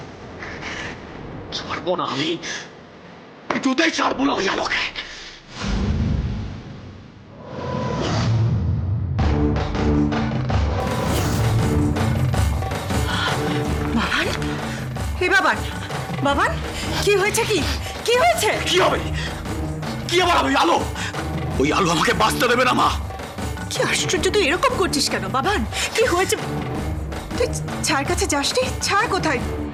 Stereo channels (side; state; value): both; identical; correlation 1.00